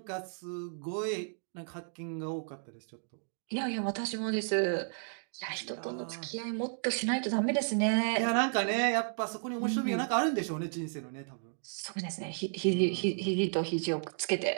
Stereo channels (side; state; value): left; silent; digital silence